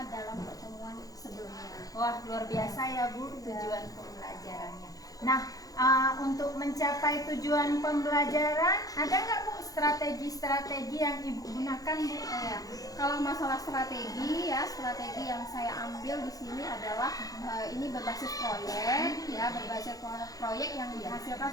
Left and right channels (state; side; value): late; right; 0.17 ms